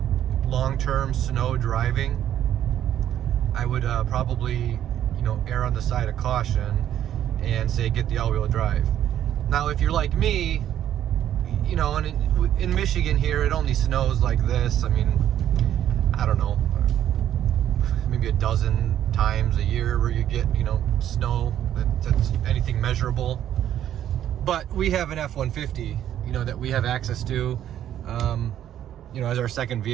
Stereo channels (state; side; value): quieter; left; 11.0 dB